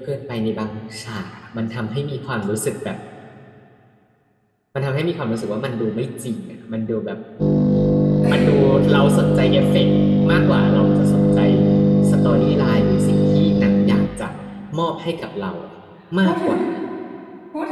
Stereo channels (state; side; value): identical; both; correlation 1.00